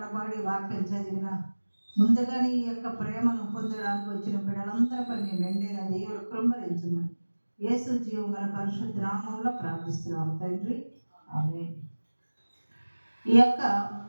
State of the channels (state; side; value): inverted; both; correlation -1.00